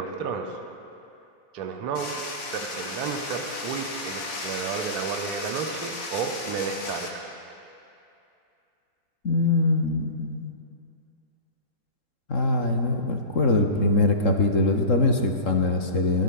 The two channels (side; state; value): right; late; 3.7 ms